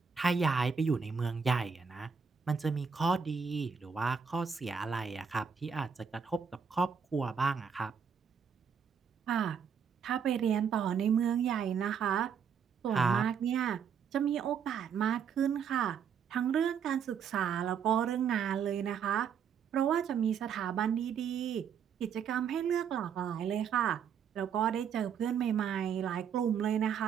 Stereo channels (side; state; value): left; quieter; 7.0 dB